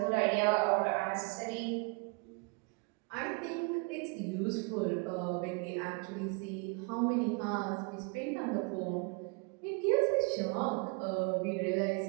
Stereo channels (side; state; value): left; quieter; 31.5 dB